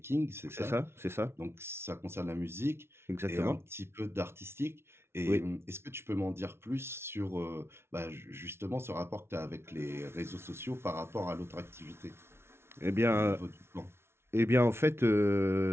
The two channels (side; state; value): left; late; 0.12 ms